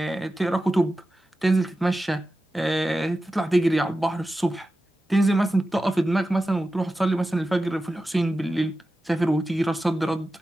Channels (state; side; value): normal; both; correlation 0.93